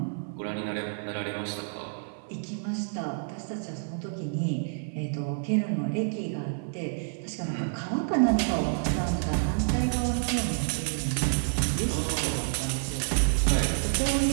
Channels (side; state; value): left; silent; 59 dB below the other